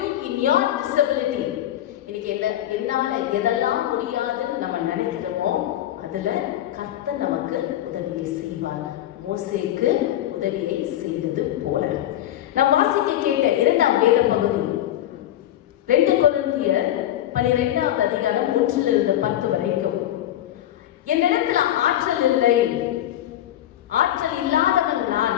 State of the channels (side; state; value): right; quieter; 12.6 dB